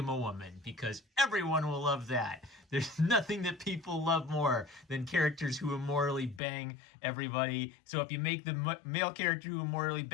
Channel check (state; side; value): drops out; right; at 6.4 s